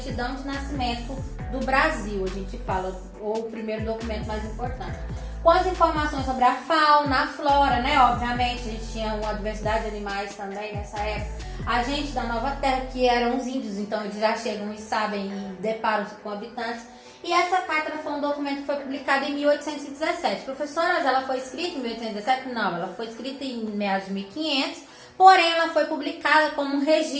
de nascimento do Brasil, a gente fala, ou o primeiro documento mais importante. Com as informações sobre a fauna, a flora, né? Obviamente, a gente tinha uma diversidade de animais também nessa época. A gente da Nova Terra, que eram os índios, então eles já chegam e sabem e deparam-se com habitantes. E essa carta foi um documento que foi publicado em 1817. Professora, ela foi escrita em 1817? Não, ela foi escrita em meados de 1500, porém ela foi publicada como um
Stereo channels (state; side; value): identical; both; correlation 1.00